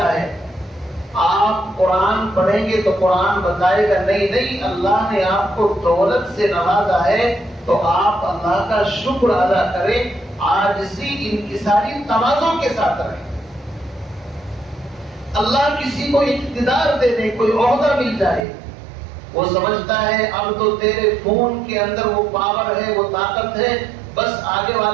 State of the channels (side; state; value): left; drops out; at 18.4 s